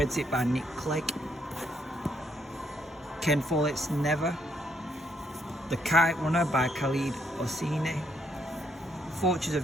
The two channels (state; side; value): normal; both; correlation 0.73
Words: by Nick Clegg. Ken Follett's Never. The Kite Runner by Khalid Hosseini. Forces